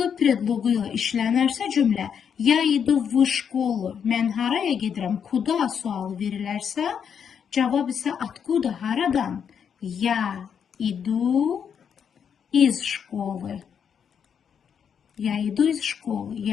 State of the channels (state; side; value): quieter; right; 7.5 dB